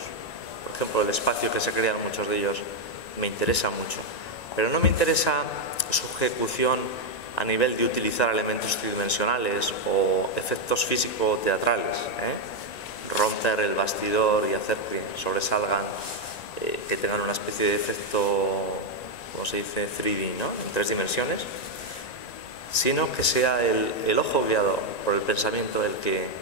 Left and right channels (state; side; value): late; right; 1.9 ms